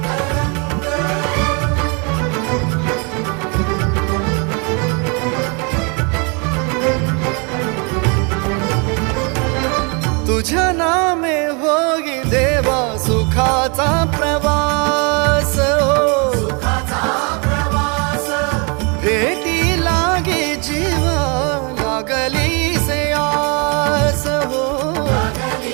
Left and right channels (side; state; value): left; quieter; 33.1 dB